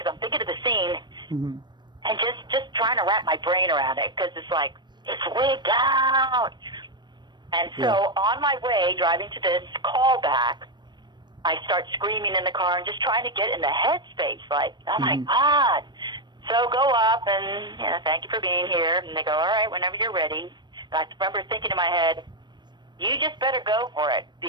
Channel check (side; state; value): left; late; 0.22 ms